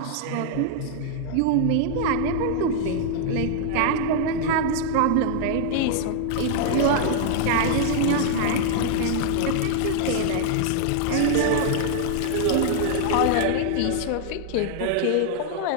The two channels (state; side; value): different; both; correlation 0.00